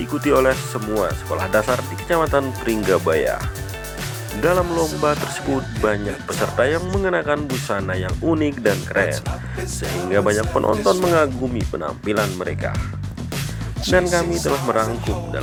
oleh semua sekolah dasar di Kecamatan Pringgabaya. Dalam lomba tersebut banyak peserta yang mengenakan busana yang unik dan keren, sehingga banyak penonton mengagumi penampilan mereka. Dan kami telah merangkum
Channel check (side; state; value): both; identical; correlation 1.00